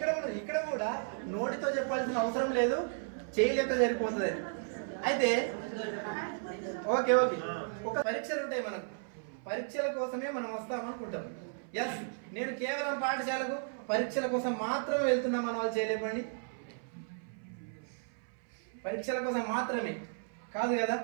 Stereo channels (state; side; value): silent; left; 55 dB below the other